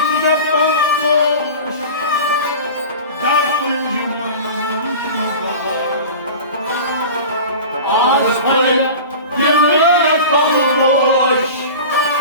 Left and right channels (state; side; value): inverted; both; correlation -0.35